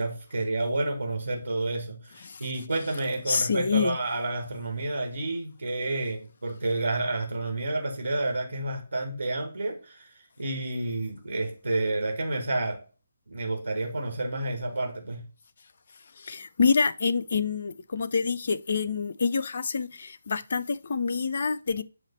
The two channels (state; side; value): inverted; both; correlation -0.84